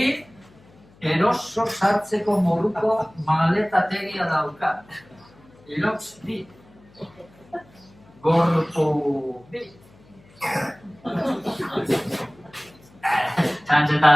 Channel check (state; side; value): noise; left; hum, 27 dB below the sound